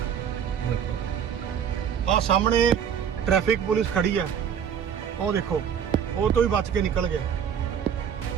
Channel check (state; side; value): quieter; left; 8.2 dB